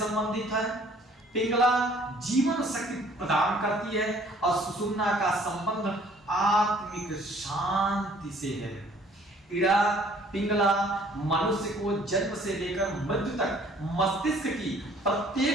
है, पिंगला जीवन शक्ति प्रदान करती है और सुषुम्ना का संबंध आत्मिक शांति से है। इड़ा पिंगला मनुष्य को जन्म से लेकर मृत्यु तक मस्तिष्क की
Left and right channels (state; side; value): normal; both; correlation 0.57